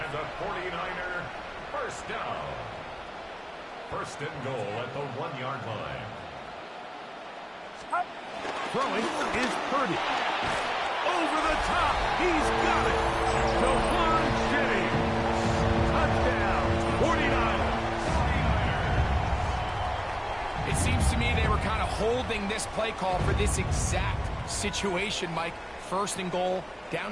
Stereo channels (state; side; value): identical; both; correlation 1.00